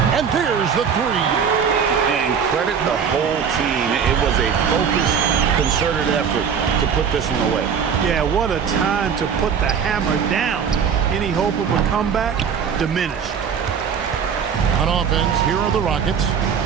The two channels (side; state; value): left; quieter; 7.0 dB